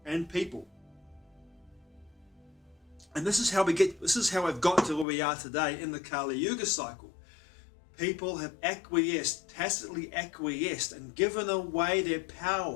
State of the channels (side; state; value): right; drops out; at 5.1 s